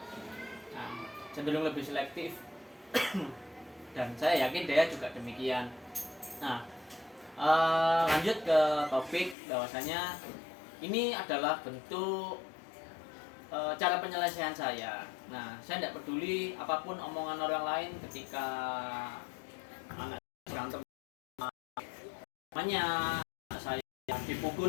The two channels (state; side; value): drops out; right; at 9.3 s